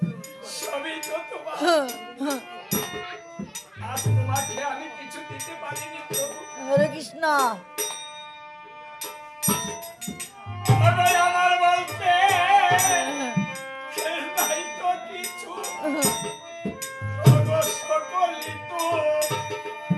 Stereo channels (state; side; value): identical; both; correlation 1.00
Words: সবই তো তোমার। আজ তোমাকে আমি কিছু দিতে পারিনি প্রভু। হরে কৃষ্ণ। আমার বলতে নাই তো কিছু, সকলই তো